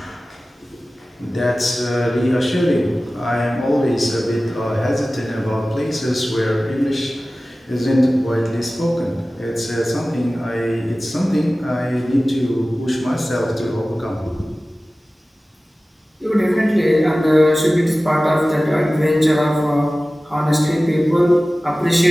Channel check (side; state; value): both; normal; correlation 0.97